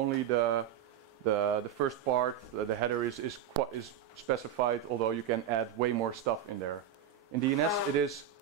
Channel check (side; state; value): left; quieter; 9.1 dB